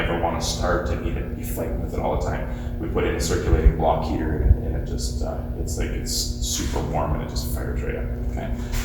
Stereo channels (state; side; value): identical; both; correlation 1.00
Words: want to start and need to be fighting with it all the time. We put in a circulating block heater, and it just, it's super warm, and it just fires right up, okay?